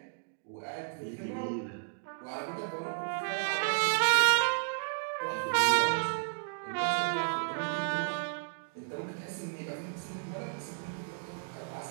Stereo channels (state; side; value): silent; left; digital silence